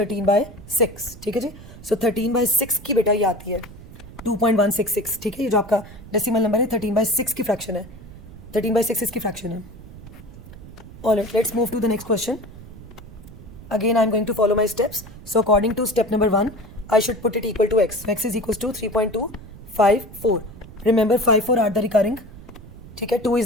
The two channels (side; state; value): right; noise; rumble, 17 dB below the sound